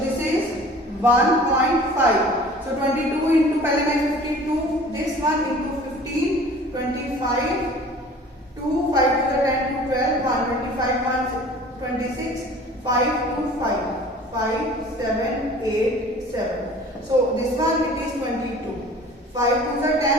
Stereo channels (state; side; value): normal; both; correlation 0.46